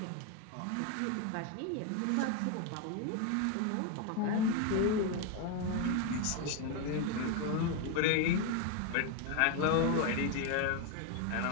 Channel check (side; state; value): both; different; correlation 0.01